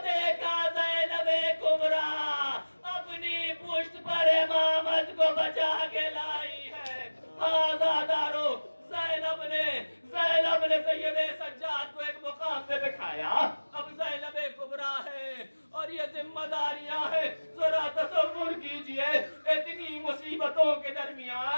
دیکھا زینب کبریٰ اپنی پشت پر امامت کو بچا کے لائی ہے۔ آزادارو، زینب نے سید سجاد کو ایک مقام پہ بٹھایا۔ اب زینب کبریٰ ہے اور یہ ذمہ داریاں ہیں۔ ذرا تصور کیجئے، اتنی مصیبتوں کے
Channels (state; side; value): inverted; both; correlation -1.00